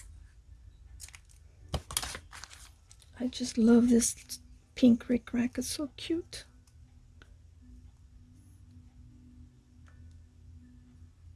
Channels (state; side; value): identical; both; correlation 1.00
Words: I just love this pink bric-a-brac. It's so cute.